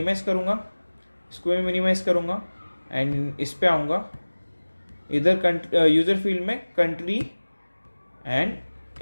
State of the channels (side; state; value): both; inverted; correlation -1.00